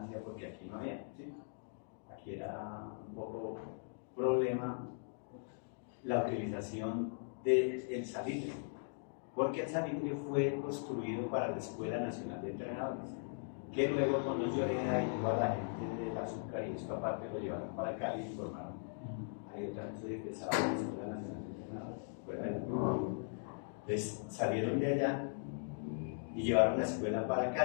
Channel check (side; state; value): right; silent; digital silence